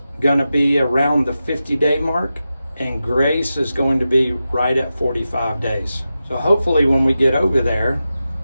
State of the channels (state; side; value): inverted; both; correlation -0.92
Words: going to be around the 50-day mark, and Grace is going to be right at 45 days. So hopefully when we get over there,